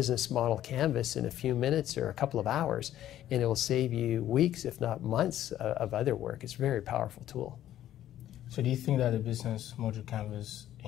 model canvas in a few minutes or a couple of hours, and it will save you weeks, if not months, of other work. It's a very powerful tool. So do you think that the business module canvas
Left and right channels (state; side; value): quieter; right; 12.3 dB